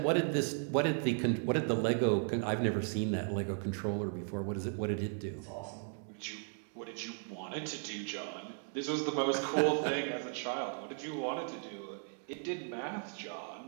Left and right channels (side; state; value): left; silent; 54 dB below the other